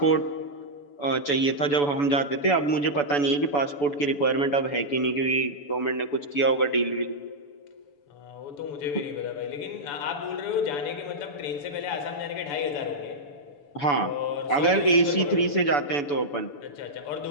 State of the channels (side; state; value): right; late; 7.0 ms